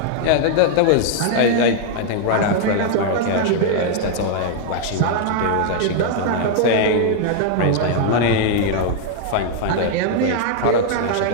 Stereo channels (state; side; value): different; both; correlation 0.00